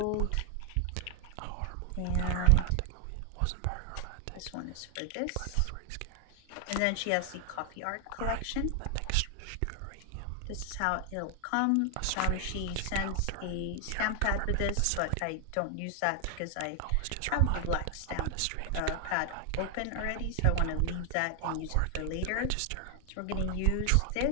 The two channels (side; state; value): both; different; correlation 0.00